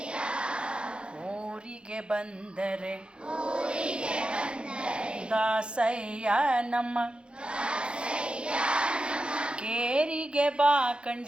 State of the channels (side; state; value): left; late; 0.055 ms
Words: ಊರಿಗೆ ಬಂದರೆ ದಾಸಯ್ಯ ನಮ್ಮ ಕೇರಿಗೆ ಬಾ